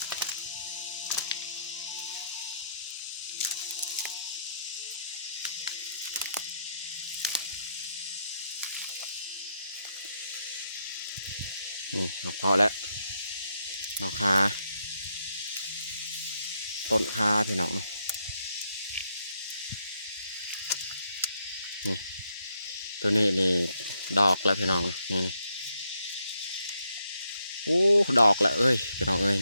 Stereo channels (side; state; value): both; inverted; correlation -0.77